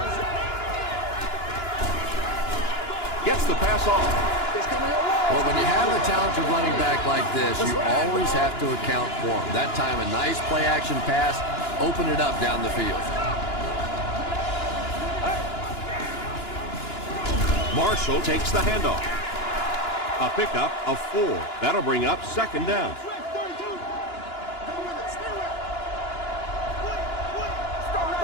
Gets the pass off. Well, when you have a talented running back like this, you always have to account for him. That time, a nice play-action pass, open it up down the field. Marshall takes the handoff. A pickup of 4. That'll bring up second down.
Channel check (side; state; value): right; late; 2.9 ms